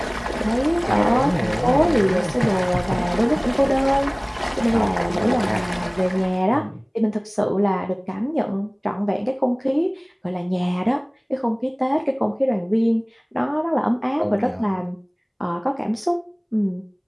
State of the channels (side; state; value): both; identical; correlation 1.00